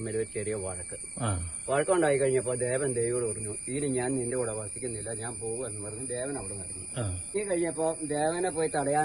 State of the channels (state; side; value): noise; right; rumble, 21 dB below the sound